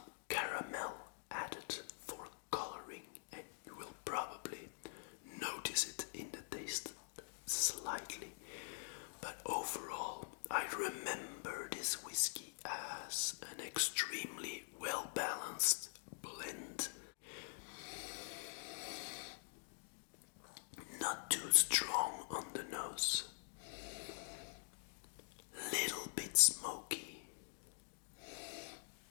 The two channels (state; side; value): silent; right; digital silence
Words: caramel added for coloring, and you will probably notice it in the taste slightly. But overall, I remember this whiskey as an extremely well-balanced blend. Not too strong on the nose, little bit smoky,